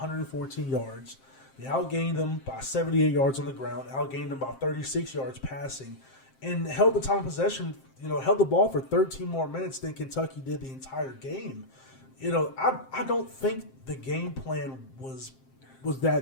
yards. They outgained them by 78 yards on the ground, outgained them by 36 yards passing, and held the time of possession, held the ball for 13 more minutes than Kentucky did the entire game. I don't think the game plan was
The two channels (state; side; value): late; right; 7.6 ms